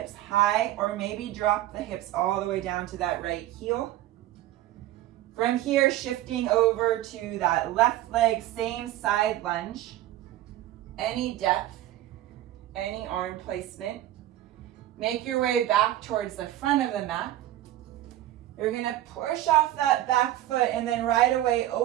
high, or maybe drop the hips all the way down to that right heel. From here, shifting over to that left leg, same side lunge. Any depth. Any arm placement. Make your way back towards the front of the mat. You're going to push off that back foot and then right away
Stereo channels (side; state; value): left; quieter; 14.1 dB